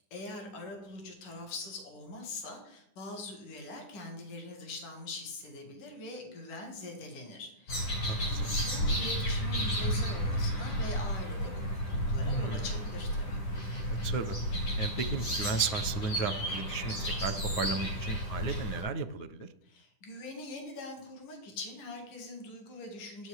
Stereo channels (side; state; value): right; late; 10 ms